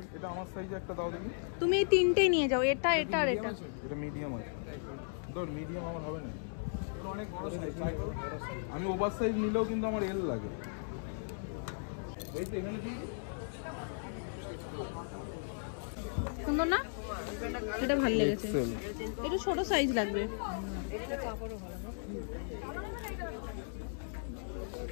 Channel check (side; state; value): right; silent; digital silence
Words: এটা আমার সাইজে একটা দাও দেখি। তুমি এই তিনটেই নিয়ে যাও, এটা এটা আর এটা। এটা মিডিয়াম আছে, ধর মিডিয়াম আমার হবে না, এটা অনেক বড় সাইজ। আমি ওভার সাইজ নিলেও কিন্তু আমার এল লাগে। এই তো এখানে কি সুন্দর না, এটা ভালো লেগেছে। এটা ছোট সাইজ লাগবে।